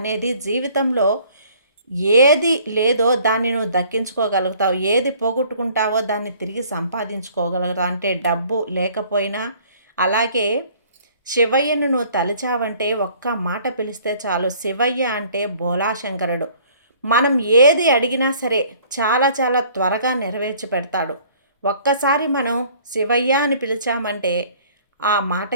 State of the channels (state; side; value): inverted; both; correlation -0.55